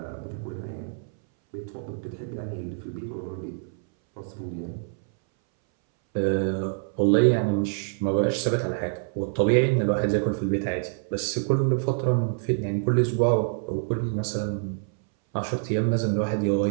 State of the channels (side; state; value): left; silent; 61 dB below the other